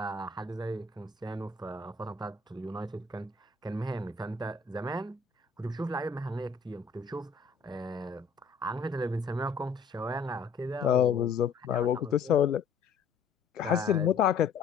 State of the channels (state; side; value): quieter; right; 5.2 dB